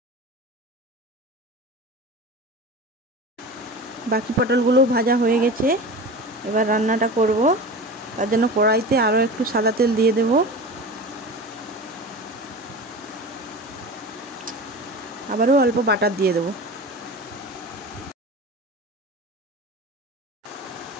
বাকি পটলগুলো ভাজা হয়ে গেছে, এবার রান্নাটা করব। তার জন্য কড়াইতে আরও একটু সাদা তেল দিয়ে দেব। আবারও অল্প বাটার দিয়ে দেব।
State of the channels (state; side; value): normal; both; correlation 0.32